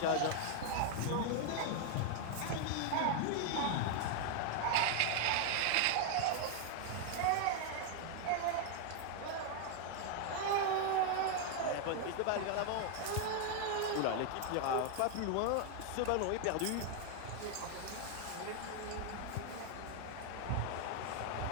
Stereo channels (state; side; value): different; both; correlation 0.00